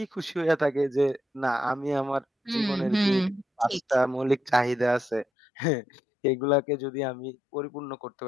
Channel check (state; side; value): drops out; right; at 5.2 s